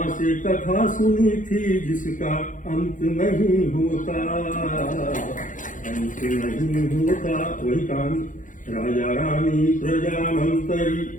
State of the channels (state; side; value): late; right; 0.37 ms